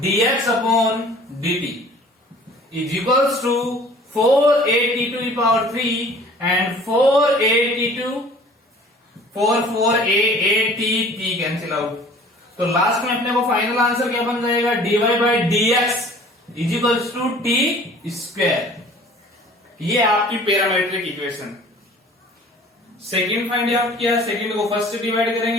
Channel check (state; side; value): normal; both; correlation 0.49